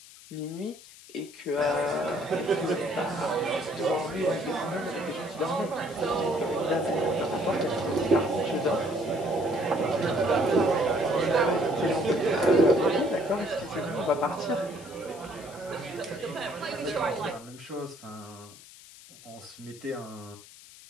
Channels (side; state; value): left; noise; hiss, 19 dB below the sound